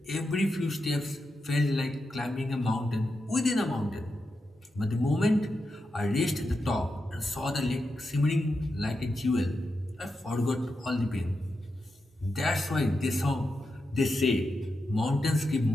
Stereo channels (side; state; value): both; normal; correlation 0.88